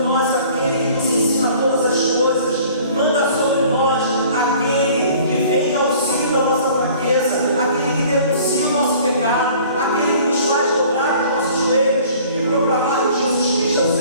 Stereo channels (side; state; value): both; inverted; correlation -0.51